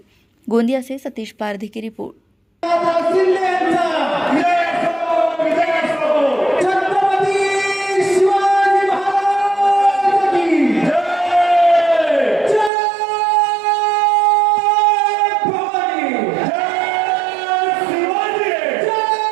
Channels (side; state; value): left; drops out; at 12.7 s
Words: गोंदिया से सतीश पारधी की रिपोर्ट।